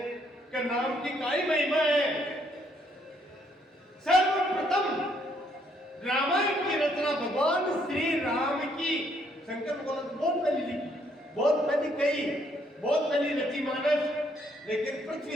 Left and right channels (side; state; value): both; normal; correlation 0.70